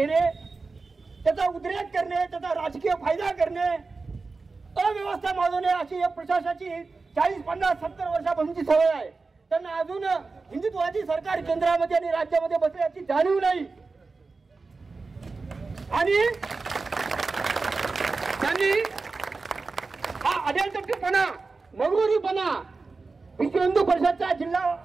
त्याचा उद्रेक करणे, त्याचा राजकीय फायदा करणे, अव्यवस्था माजवणे अशी या प्रशासनाची 40, 50, 70 वर्षापासूनची सवय आहे। त्यांना अजून हिंदुत्वाची सरकार केंद्रामध्ये आणि राज्यामध्ये बसल्याची जाणीव नाही आणि त्यांनी हा अडेलतट्टूपणा, मगरुरीपणा विश्व हिंदू परिषदच्या जिल्हा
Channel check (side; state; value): left; quieter; 4.0 dB